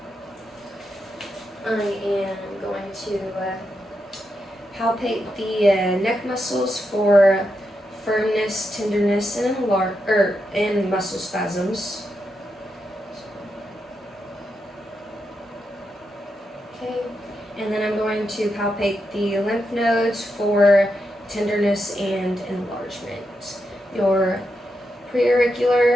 I am going to palpate the neck muscles for firmness, tenderness, and muscle spasms. Okay, and then I'm going to palpate the lymph nodes for tenderness and enlargement. Your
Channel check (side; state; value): both; normal; correlation 0.85